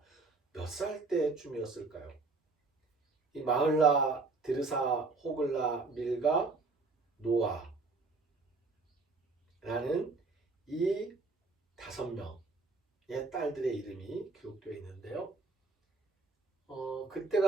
몇 살 때쯤이었을까요? 이 마흘라, 디르사, 호글라, 밀가, 노아라는 이 5명의 딸들의 이름이 기록되어 있는데요.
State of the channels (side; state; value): left; quieter; 3.8 dB